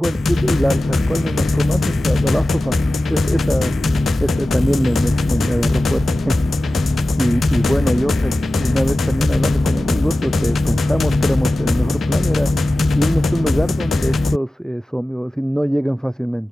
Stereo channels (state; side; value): normal; both; correlation 0.95